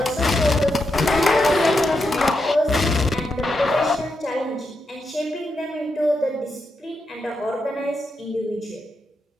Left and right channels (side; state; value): both; normal; correlation 0.84